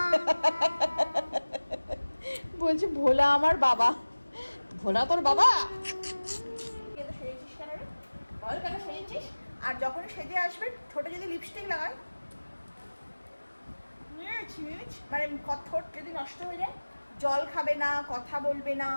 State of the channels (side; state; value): both; inverted; correlation -1.00